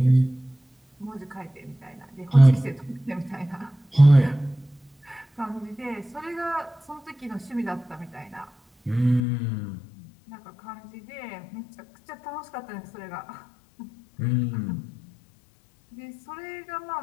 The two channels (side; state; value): right; drops out; at 9.2 s